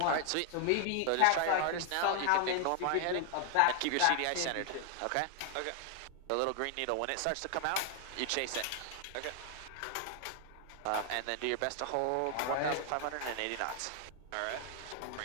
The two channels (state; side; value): different; both; correlation 0.00